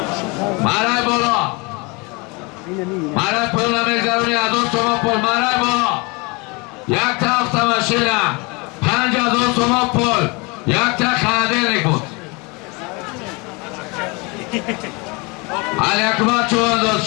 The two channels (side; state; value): right; quieter; 28.1 dB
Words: Maray bolo! Maray pulna mezaruni azon soman pul maray bolo! یک تا автомашина 5000 сомон пул یک تا холодильник буд Алякбар Чувандоз